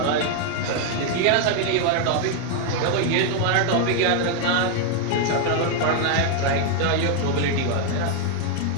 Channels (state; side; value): different; both; correlation 0.00